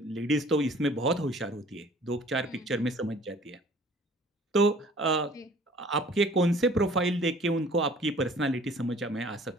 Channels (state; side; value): normal; both; correlation 0.52